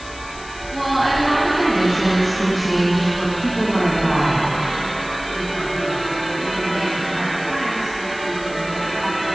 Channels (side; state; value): left; noise; hiss, 17 dB below the sound